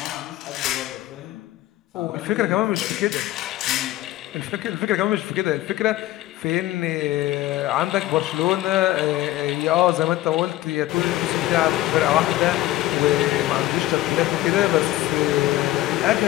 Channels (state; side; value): quieter; right; 15.8 dB